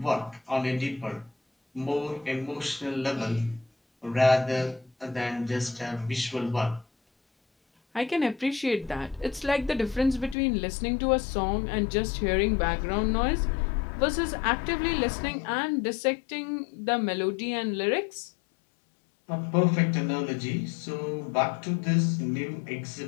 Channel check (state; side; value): drops out; right; at 10.4 s